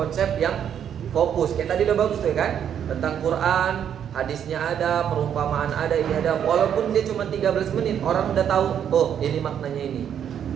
yang fokus. Kayak tadi udah bagus tuh ya kan. Tentang Quran, hadisnya ada, perumpamaan ada, ini ada. Walaupun dia cuma 13 menit, orang udah tahu, oh ini maknanya ini.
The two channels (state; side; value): quieter; left; 9.0 dB